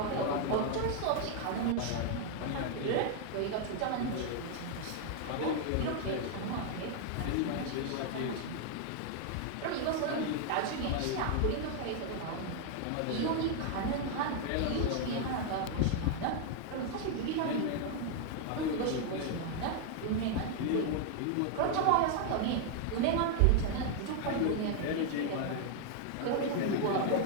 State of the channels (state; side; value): different; both; correlation 0.00